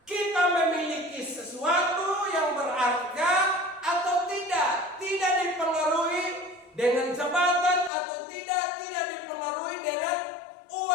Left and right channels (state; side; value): drops out; right; at 7.9 s